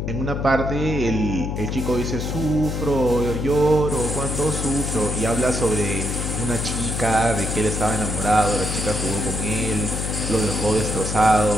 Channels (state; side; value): noise; left; hum, 3 dB below the sound